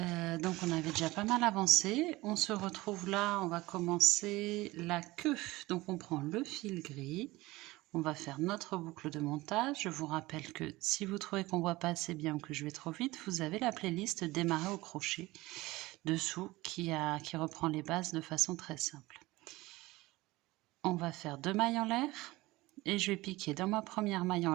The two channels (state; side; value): quieter; left; 19.9 dB